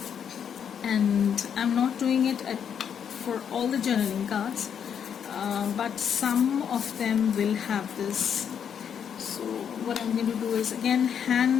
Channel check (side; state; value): right; quieter; 8.0 dB